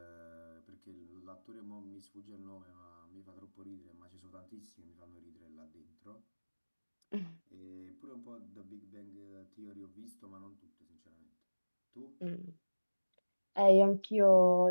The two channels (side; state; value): both; inverted; correlation -1.00